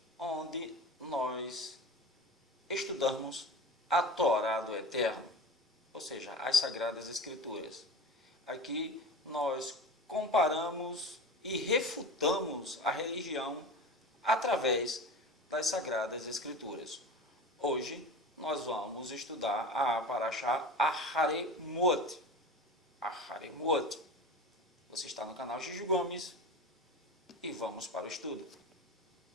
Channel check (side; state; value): both; normal; correlation 0.32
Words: onde nós estudamos a Torá do Eterno, ou seja, as Sagradas Escrituras. Aqui nós comparamos e refutamos a religião através das Sagradas Escrituras. Hoje nós vamos estudar a Parashá Aharemot. Aharemot. Você está no canal Juju Gomes e vamos para o estudo.